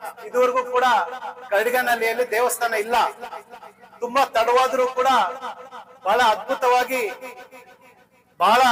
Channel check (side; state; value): both; identical; correlation 1.00